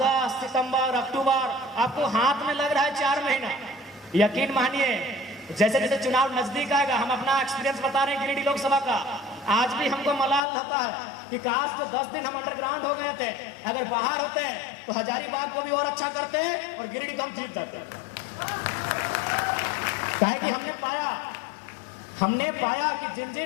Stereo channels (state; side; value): drops out; right; at 10.5 s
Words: सितंबर, अक्टूबर, आपको हाथ में लग रहा है 4 महीना, यकीन मानिए जैसे जैसे चुनाव नजदीक आएगा, हम अपना एक्सपीरियंस बता रहे हैं गिरिडीह लोकसभा का, आज भी हमको मलाल रहता है कि काश तो 10 दिन हम अंडरग्राउंड हो गए थे, अगर बाहर होते तो हजारीबाग को भी और अच्छा करते और गिरिडीह तो हम जीत जाते। काहे कि हमने पाया कि जिन